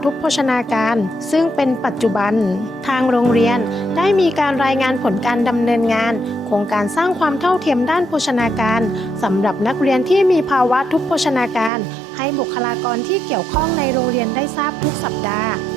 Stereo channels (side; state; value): left; drops out; at 11.7 s